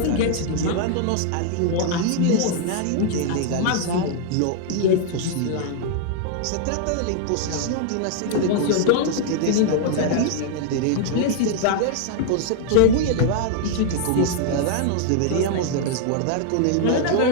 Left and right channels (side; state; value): both; different; correlation 0.00